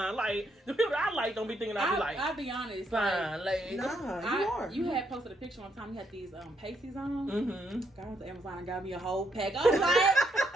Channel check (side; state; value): both; normal; correlation 0.75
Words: Like, the people I like don't be thinking I'll be like, I'll be honest. fine, like, nah, you are. You had posted a picture one time. You had these pasties on. Mm-hmm. I went to Amazon and got me a whole pack. I was like,